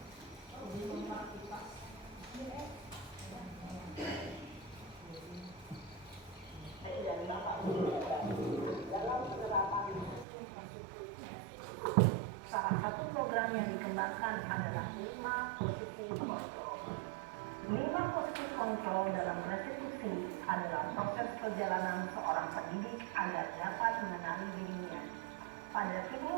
Salah satu program yang dikembangkan adalah 5 posisi kontrol. 5 posisi kontrol dalam restitusi adalah proses perjalanan seorang pendidik agar dapat mengenali dirinya. Pada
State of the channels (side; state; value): left; drops out; at 10.2 s